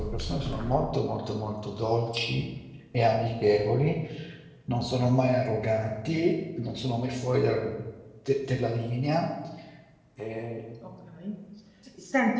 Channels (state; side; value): identical; both; correlation 1.00